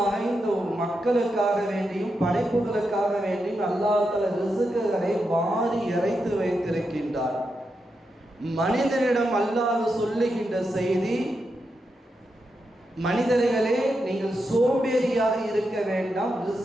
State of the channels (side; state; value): both; normal; correlation 0.86